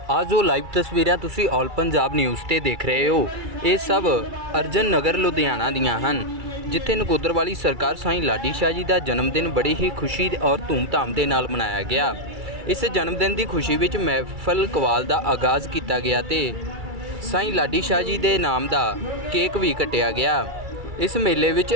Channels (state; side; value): late; left; 2.3 ms